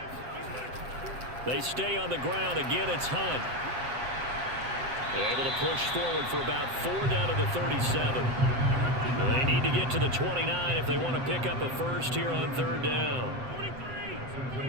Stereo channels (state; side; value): late; left; 7.8 ms